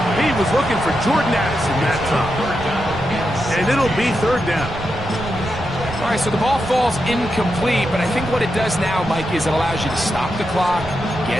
He was looking for Jordan Addison that time. And it'll be 3rd down. All right, so the ball falls incomplete, but I think what it does now, Mike, is it allows you to stop the clock,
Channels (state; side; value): noise; right; rumble, 12 dB below the sound